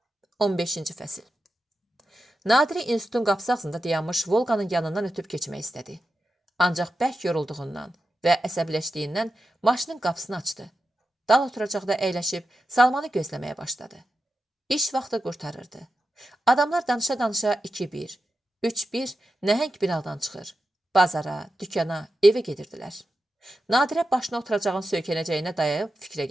15-ci fəsil. Nadiri institutun qapısı ağzında dayanmış Volqanın yanından ötüb keçmək istədi. Ancaq bərk yorulduğundan və əsəbləşdiyindən maşının qapısını açdı. Dal oturacaqda əyləşib Salmanı gözləməyə başladı. İş vaxtı qurtarırdı. Adamlar danışa-danışa 2-1, 3-1 nəhəng binadan çıxır. Bazara, dükana, evə gedirdilər. Nadirə başına oturacağın söykənəcəyinə dayayıb fikrə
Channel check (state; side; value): normal; both; correlation 0.90